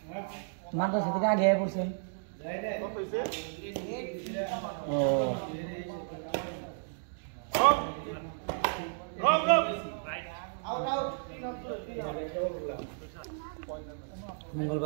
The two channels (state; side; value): silent; left; digital silence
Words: মাদ্রাসা থেকে আগে পড়ছেন? ও